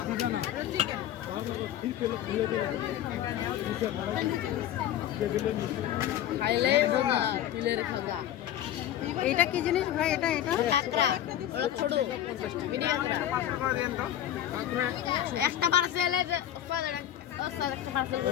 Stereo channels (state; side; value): quieter; right; 11.7 dB